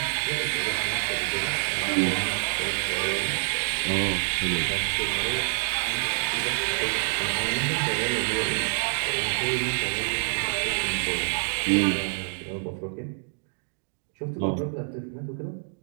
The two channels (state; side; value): silent; left; digital silence